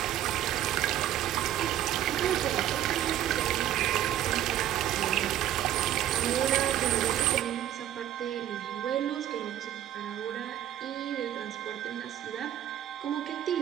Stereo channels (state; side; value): quieter; left; 12.0 dB